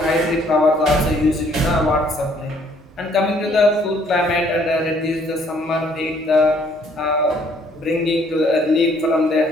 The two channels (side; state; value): both; normal; correlation 0.63